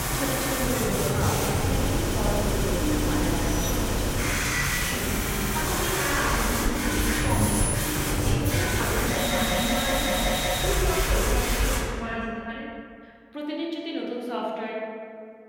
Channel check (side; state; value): both; identical; correlation 1.00